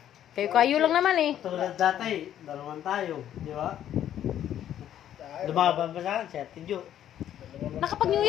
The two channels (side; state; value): right; quieter; 10.9 dB